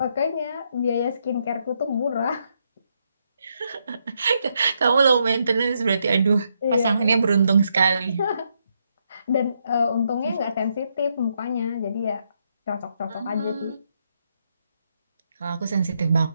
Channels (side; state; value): both; inverted; correlation -0.78